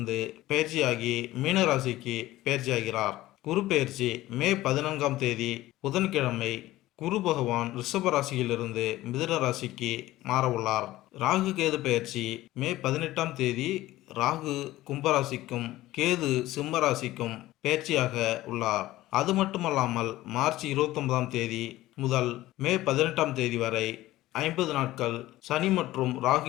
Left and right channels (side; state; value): right; quieter; 16.3 dB